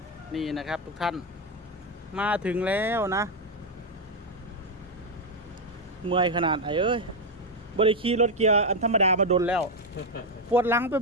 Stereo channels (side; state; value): both; normal; correlation 0.04